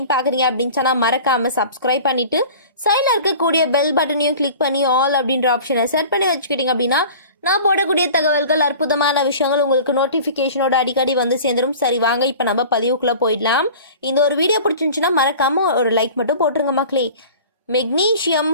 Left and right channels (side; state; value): both; inverted; correlation -0.41